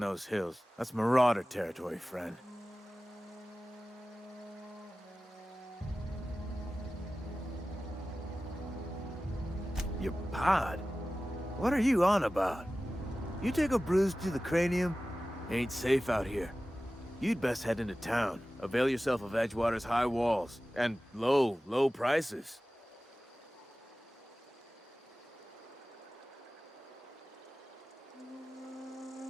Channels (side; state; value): both; normal; correlation 0.96